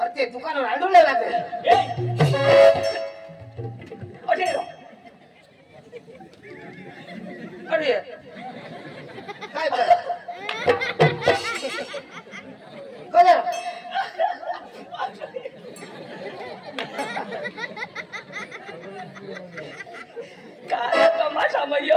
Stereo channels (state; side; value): identical; both; correlation 1.00